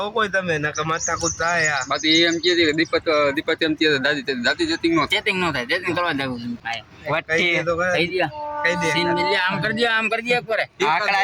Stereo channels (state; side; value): identical; both; correlation 1.00